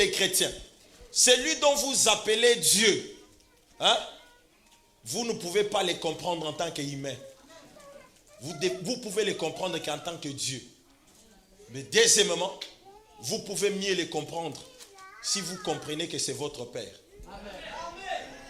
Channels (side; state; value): both; identical; correlation 1.00